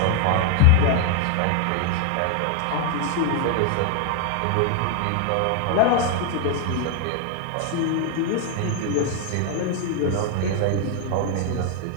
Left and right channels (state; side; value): different; both; correlation 0.00